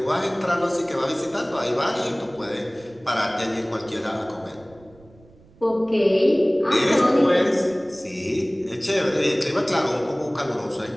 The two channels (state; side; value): noise; right; rumble, 26 dB below the sound